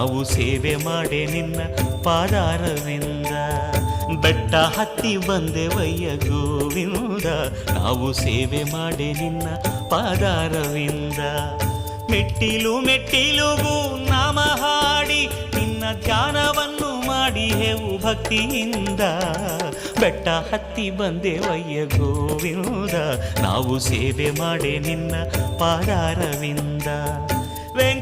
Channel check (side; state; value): both; identical; correlation 1.00